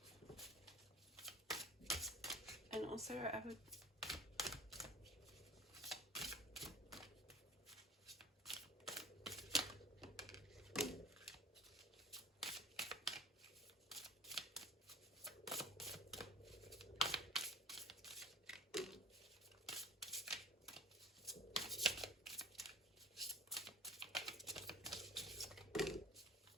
And also I would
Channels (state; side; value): normal; both; correlation 0.43